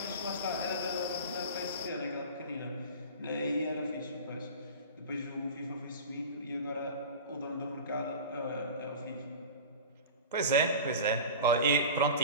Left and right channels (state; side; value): inverted; both; correlation -0.33